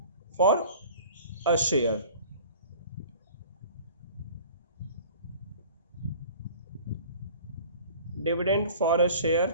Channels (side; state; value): both; inverted; correlation -0.45